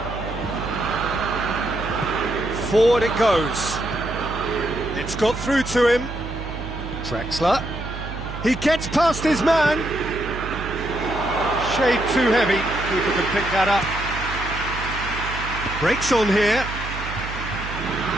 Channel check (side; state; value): right; noise; hum, 9 dB below the sound